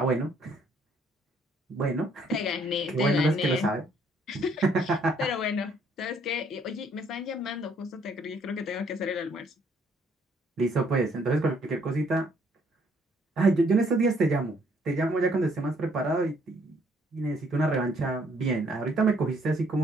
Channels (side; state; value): both; normal; correlation 0.66